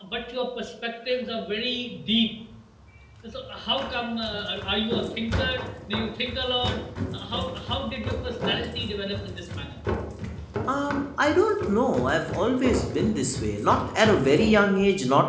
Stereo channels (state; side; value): identical; both; correlation 1.00